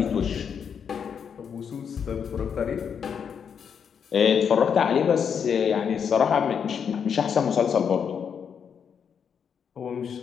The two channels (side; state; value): right; quieter; 7.2 dB